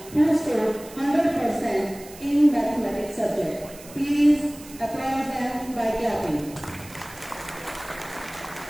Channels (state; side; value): noise; right; hiss, 18 dB below the sound